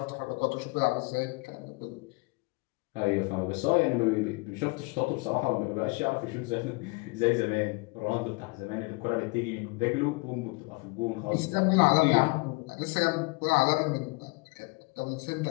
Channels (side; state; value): right; quieter; 28.2 dB